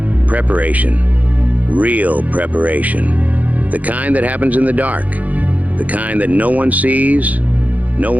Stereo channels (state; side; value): late; left; 0.077 ms